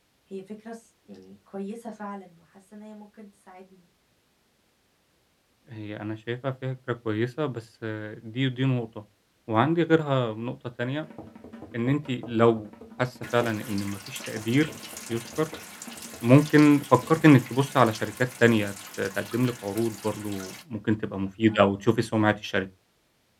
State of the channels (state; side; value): identical; both; correlation 1.00